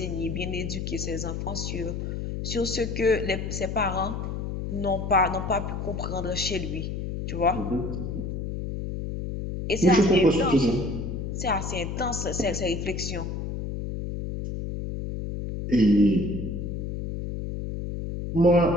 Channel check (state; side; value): noise; left; hum, 4 dB below the sound